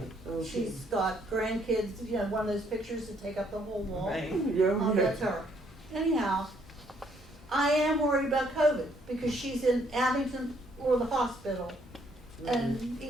She's got grandkids, you know, one of those pictures that take up the whole wall. Right. Oh, that's her. Anyhow, I am worried about COVID because she's in Abington or the hospital. And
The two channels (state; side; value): normal; both; correlation 0.68